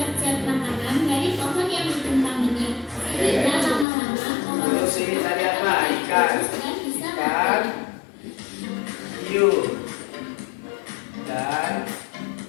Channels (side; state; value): right; drops out; at 3.9 s